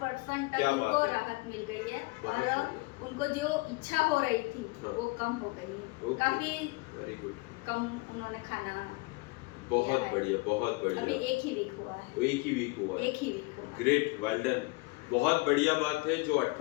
क्या तक बात उनको है। राहत मिल गई है, बहुत और बढ़िया। उनको जो इच्छा हो रही थी हाँ। वो कम हो गई है। ओके, काफ़ी वेरी गुड, कम उन्होंने खाना बहुत है। बढ़िया, बहुत अभी बढ़िया। एक ही वीक हुआ है। तो एक ही वीक हुआ है। एक ही वीक हुआ है। Great, well done. बहुत बढ़िया बात है। जो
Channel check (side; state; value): right; quieter; 24.9 dB